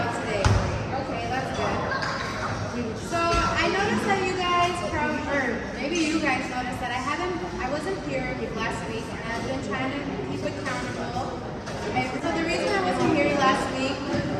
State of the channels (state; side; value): identical; both; correlation 1.00